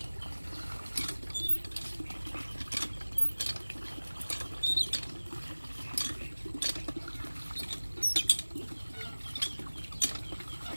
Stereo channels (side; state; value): both; inverted; correlation -1.00